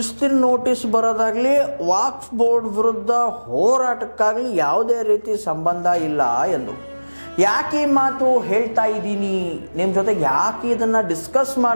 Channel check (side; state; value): both; inverted; correlation -1.00